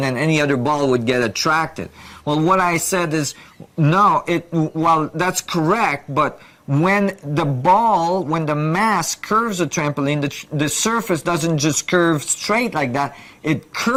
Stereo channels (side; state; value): both; identical; correlation 1.00